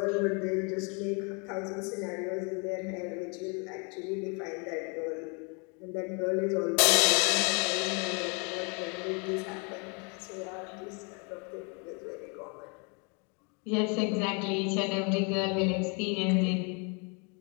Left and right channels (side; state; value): right; quieter; 34.2 dB